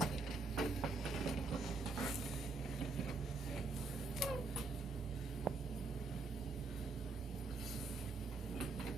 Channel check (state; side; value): quieter; left; 3.9 dB